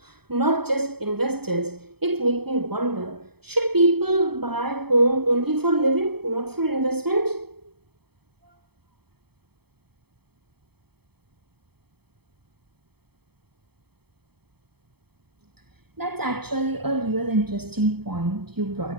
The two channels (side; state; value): left; late; 0.97 ms